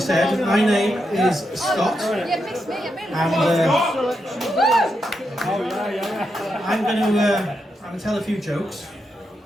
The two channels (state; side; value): normal; both; correlation 0.84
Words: My name is Scott and I'm going to tell a few jokes.